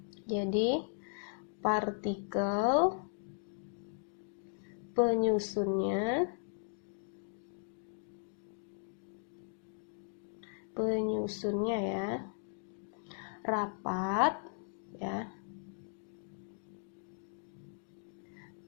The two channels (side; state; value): right; silent; digital silence